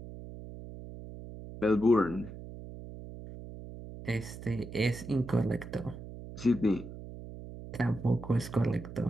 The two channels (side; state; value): right; noise; hum, 12 dB below the sound